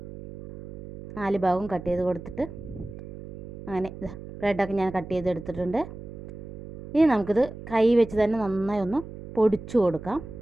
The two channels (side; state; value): right; noise; hum, 13 dB below the sound